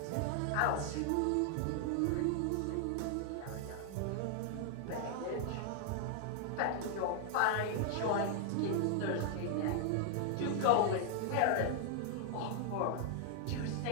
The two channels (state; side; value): different; both; correlation 0.00